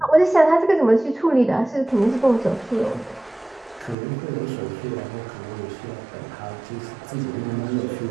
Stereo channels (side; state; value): left; drops out; at 4.0 s